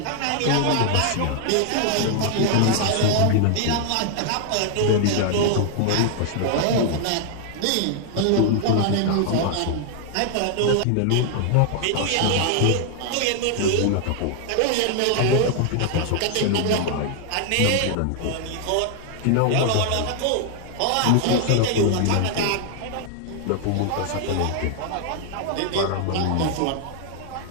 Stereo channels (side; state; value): both; different; correlation 0.00